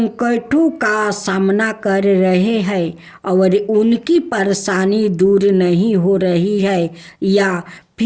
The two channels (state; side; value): identical; both; correlation 1.00